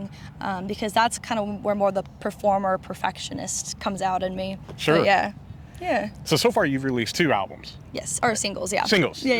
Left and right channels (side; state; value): both; identical; correlation 1.00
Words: because that's kind of where more the performer perfectionist comes out in me. Sure. But yeah. Yeah. So far you've released 2 albums. Yes, or singles, yeah. Singles.